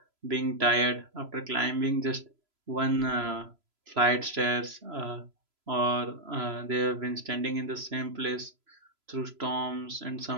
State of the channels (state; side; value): late; left; 3.0 ms